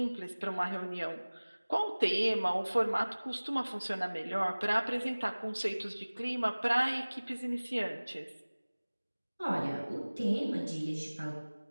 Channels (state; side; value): inverted; both; correlation -1.00